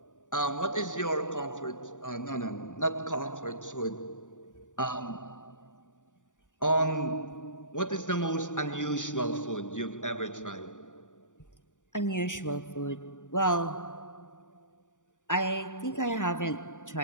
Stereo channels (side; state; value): right; late; 0.87 ms